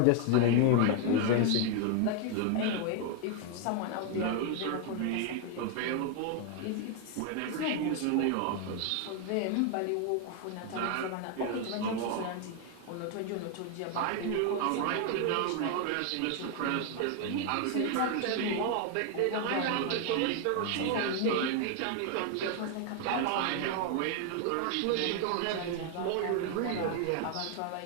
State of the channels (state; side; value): different; both; correlation 0.00